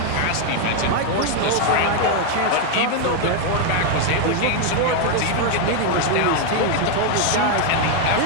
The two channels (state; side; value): different; both; correlation 0.01